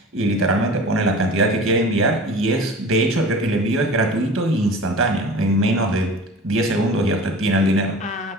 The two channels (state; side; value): normal; both; correlation 0.39